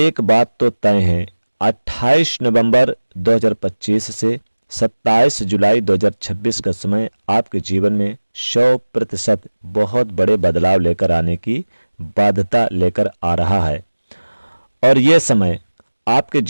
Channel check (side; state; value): both; inverted; correlation -1.00